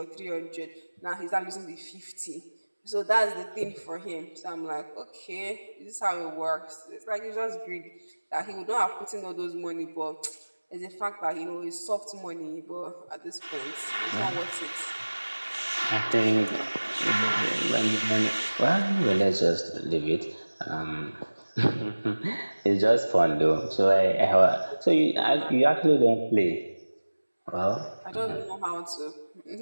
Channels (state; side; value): inverted; both; correlation -1.00